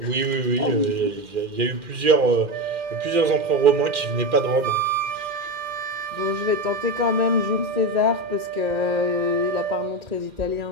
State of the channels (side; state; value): left; late; 2.4 ms